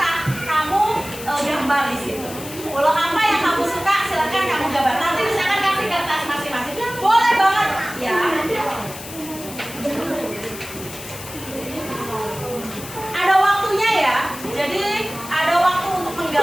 kamu gambar di situ. Pulau apa yang kamu suka, silakan kamu gambar. Nanti misalkan kasih kertas masing-masing, boleh banget, ya. Ada waktunya ya, jadi ada waktu untuk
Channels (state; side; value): noise; left; hiss, 13 dB below the sound